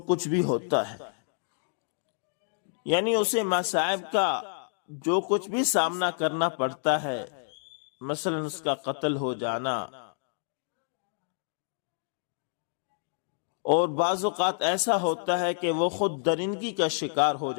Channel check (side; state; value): right; silent; digital silence